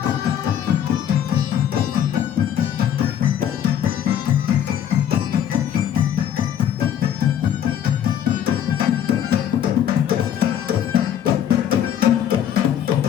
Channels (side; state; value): right; quieter; 9.9 dB